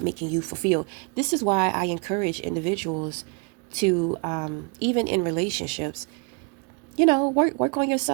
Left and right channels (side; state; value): left; quieter; 34.2 dB